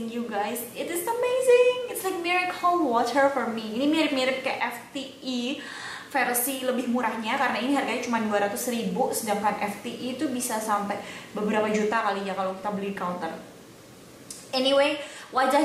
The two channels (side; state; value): both; identical; correlation 1.00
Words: you guys. It is amazing. It's like miracle water for me. Ini mirip-mirip kayak FTE versi lebih murahnya, karena ini harganya cuma 200.000, sedangkan FTE itu bisa sampai beberapa juta kali ya kalau kita beli counter. Anyway,